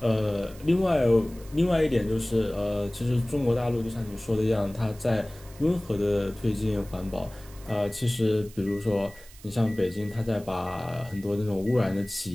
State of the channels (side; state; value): right; noise; hiss, 22 dB below the sound